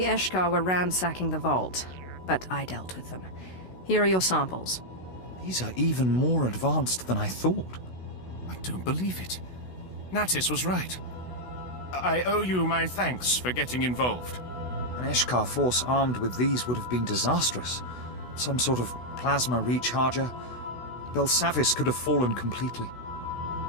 Eshkar were ransacking the vault, but I dealt with them. Here are your samples. These are even more advanced than I thought. I don't believe it. Natis was right. I owe you my thanks for getting involved. An Eshkar force armed with these would have been disastrous. Some sort of plasma recharger. Belsavis could have fallen completely.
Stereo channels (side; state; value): right; late; 16 ms